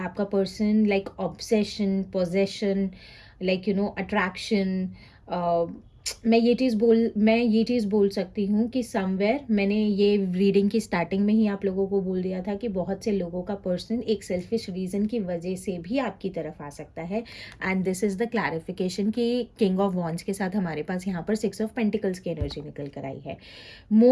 person like obsession, possession, like attraction. मैं ये चीज़ बोल सकती हूँ कि समवेयर मैंने ये रीडिंग की स्टार्टिंग में ही आप लोगों को बोल दिया था कि बहुत से लोगों का पर्सन एक सेल्फिश रीज़न की वजह से भी आपकी तरफ आ सकता है. And this is the clarification कि किंग ऑफ वॉन्ड्स के साथ हमारे पास यहाँ पर 6 ऑफ पेंटिकल्स की एनर्जी निकल कर आई है.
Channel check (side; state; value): both; identical; correlation 1.00